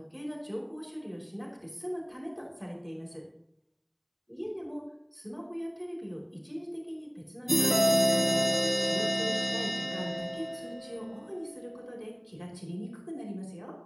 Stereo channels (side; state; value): both; identical; correlation 1.00